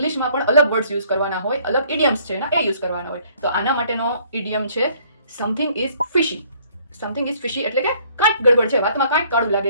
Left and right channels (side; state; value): both; inverted; correlation -0.61